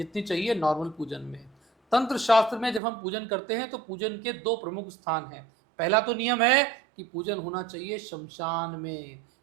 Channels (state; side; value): drops out; left; at 2.8 s